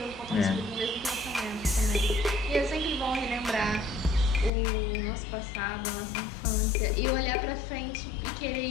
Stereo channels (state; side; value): drops out; right; at 4.5 s